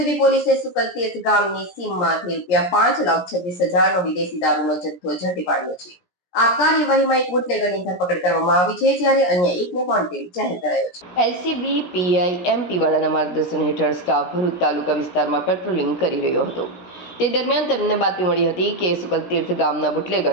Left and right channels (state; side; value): late; right; 17 ms